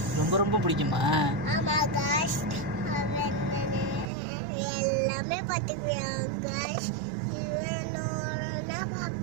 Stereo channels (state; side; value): drops out; left; at 4.1 s